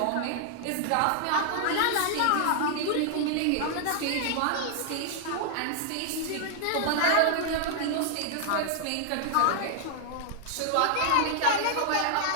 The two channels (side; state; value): both; different; correlation 0.00